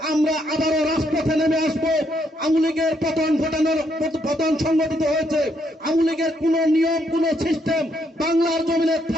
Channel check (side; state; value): both; normal; correlation 0.74